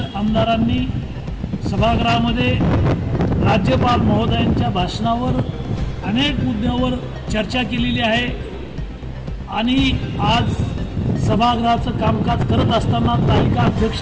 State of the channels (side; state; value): both; identical; correlation 1.00